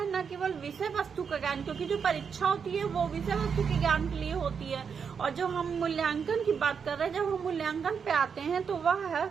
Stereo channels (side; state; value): left; quieter; 6.5 dB